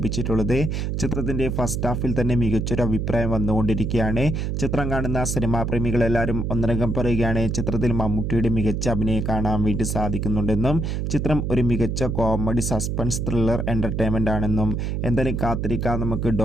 ചിത്രത്തിൻ്റെ ഫസ്റ്റ് ഹാഫിൽ തന്നെ മികച്ചൊരു അഭിപ്രായം വന്നുകൊണ്ടിരിക്കുകയാണ്. ചിത്രം കാണുന്ന സിനിമാ പ്രേമികളെല്ലാവരും ഒന്നടങ്കം പറയുകയാണ് ചിത്രത്തിൽ മമ്മൂട്ടിയുടെ മികച്ച അഭിനയം കാണാൻ വേണ്ടി സാധിക്കുന്നുണ്ടെന്നും ചിത്രം ഒരു മികച്ച കോമഡി സസ്പെൻസ് ത്രില്ലർ എൻ്റർടൈൻമെൻ്റ് ആണെന്നും. എന്തായാലും കാത്തിരിക്കാം നമുക്ക്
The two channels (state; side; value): noise; right; hum, 1 dB below the sound